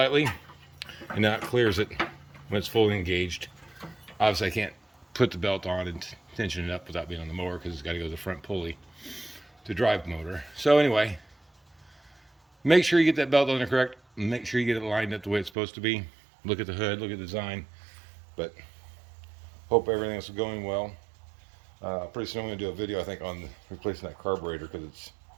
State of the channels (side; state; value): left; drops out; at 15.5 s